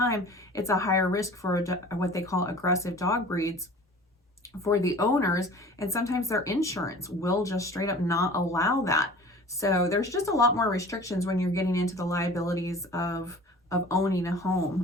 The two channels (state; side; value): normal; both; correlation 0.43